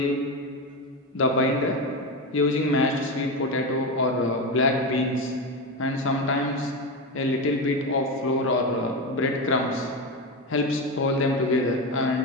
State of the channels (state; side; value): normal; both; correlation 0.17